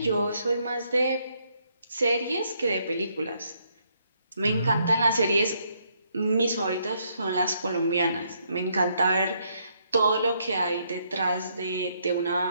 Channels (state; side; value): inverted; both; correlation -0.73